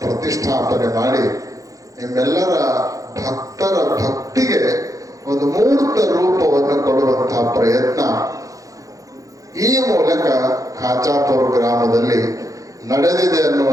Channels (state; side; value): late; left; 0.16 ms